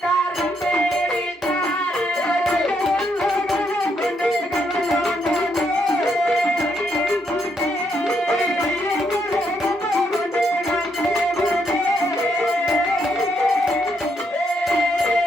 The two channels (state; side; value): normal; both; correlation 0.76